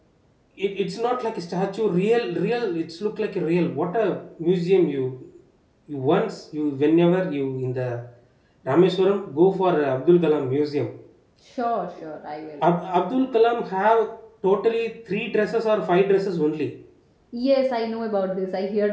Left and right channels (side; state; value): both; identical; correlation 1.00